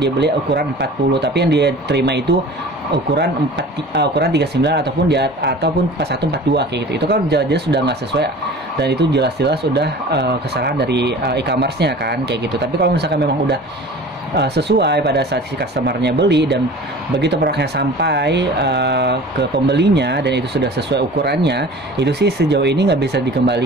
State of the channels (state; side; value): normal; both; correlation 0.41